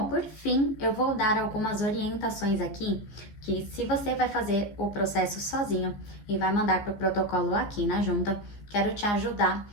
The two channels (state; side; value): late; right; 15 ms